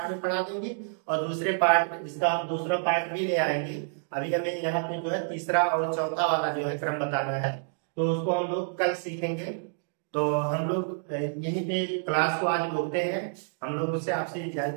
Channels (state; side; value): silent; left; digital silence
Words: में पढ़ा देंगे और दूसरे पार्ट, इसका हम दूसरा पार्ट भी ले आएंगे। अभी हमें यहाँ पे जो है तीसरा और चौथा वाला जो है क्रम बताना है, तो उसको हम लोग कल सीखेंगे। तो हम लोग यहीं पे क्लास को आज रोकते हैं, हम लोग उससे आपसे